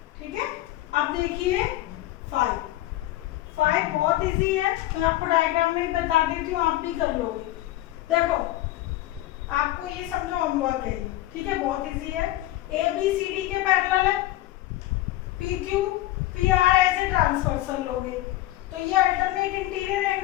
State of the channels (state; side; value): quieter; right; 15.7 dB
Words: ठीक है। अब देखिए 5 बहुत इजी है, मैं आपको डायग्राम में बता देती हूँ, आप भी कर लोगे। देखो आपको ये समझो होमवर्क है, ठीक है, बहुत इजी है। ए बी सी डी के पैरेलल है, पी क्यू पी आर ऐसे ट्रांसवर्सल लोगे, तो ये अल्टरनेट इंटीरियर